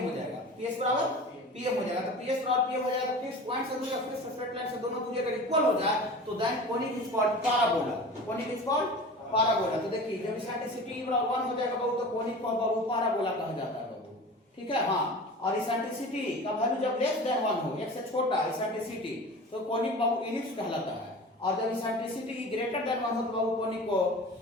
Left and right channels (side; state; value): both; normal; correlation 0.36